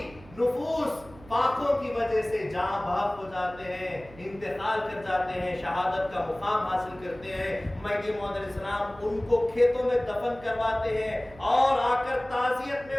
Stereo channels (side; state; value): right; noise; hum, 21 dB below the sound